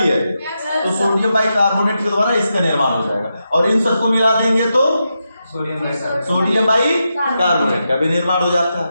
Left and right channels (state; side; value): inverted; both; correlation -0.87